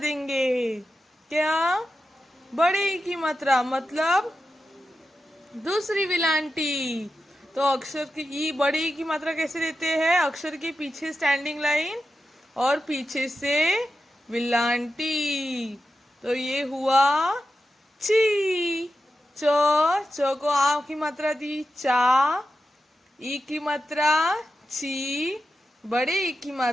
क्या? बड़े ई की मात्रा मतलब दूसरी विलांटी। तो अक्षर की ई, बड़े ई की मात्रा कैसे देते हैं? अक्षर के पीछे स्टैंडिंग लाइन और पीछे से विलांटी। तो ये हुआ ची। च को आ की मात्रा दी, चा। ई की मात्रा ची, बड़े ई की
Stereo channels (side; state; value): both; normal; correlation 0.90